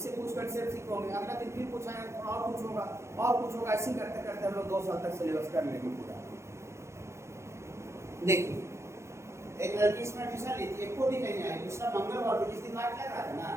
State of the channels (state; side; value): late; left; 0.13 ms